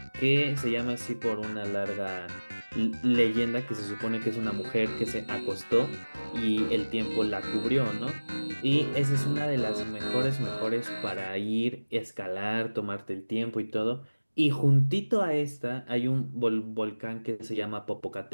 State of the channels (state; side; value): inverted; both; correlation -1.00